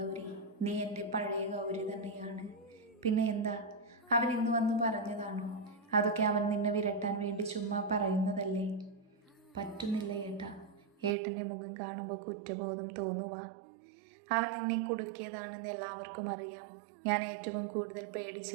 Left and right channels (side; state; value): left; drops out; at 11.2 s